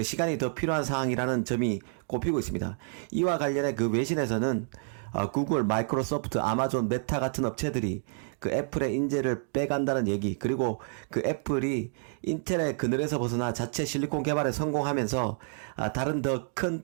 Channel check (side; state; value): left; silent; 59 dB below the other